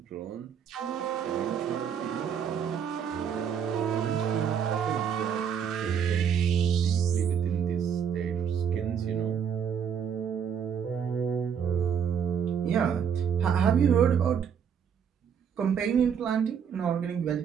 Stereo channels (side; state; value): left; quieter; 7.7 dB